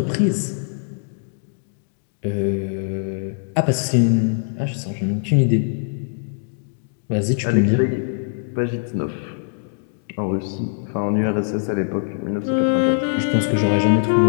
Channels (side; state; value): right; silent; digital silence